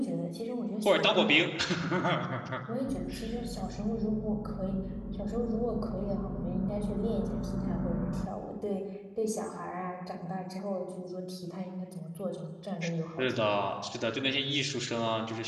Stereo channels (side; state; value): both; identical; correlation 1.00